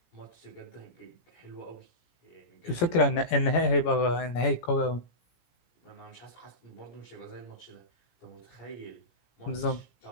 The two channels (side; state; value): right; late; 17 ms